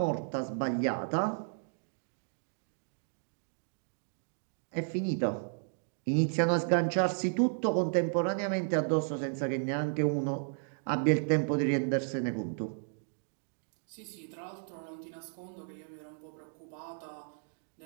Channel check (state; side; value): silent; left; digital silence